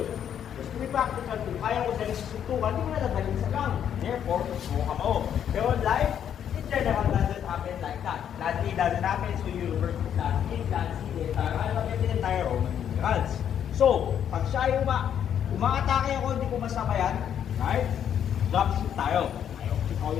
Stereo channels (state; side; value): quieter; right; 9.2 dB